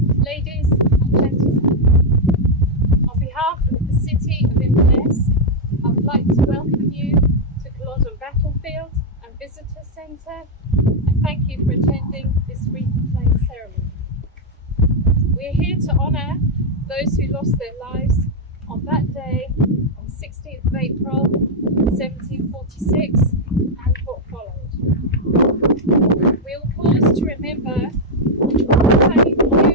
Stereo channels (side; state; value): both; normal; correlation -0.01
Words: ladies and gentlemen. On behalf of the City of Inverness, I would like to welcome you to Culloden Battlefield and Visitor Centre, and thank you for attending this wreath playing ceremony. We are here to honour those who lost their lives on that day, on 16th of April 1746, and what followed. We will pause to remember the